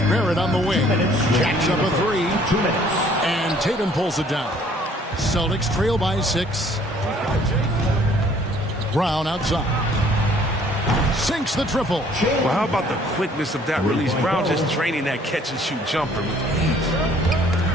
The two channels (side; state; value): both; normal; correlation 0.59